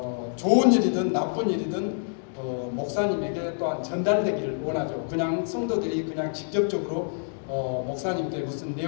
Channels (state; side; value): silent; right; digital silence